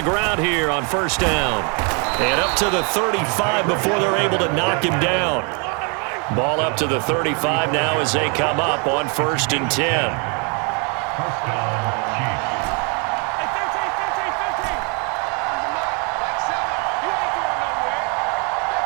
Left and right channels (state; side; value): quieter; left; 35.1 dB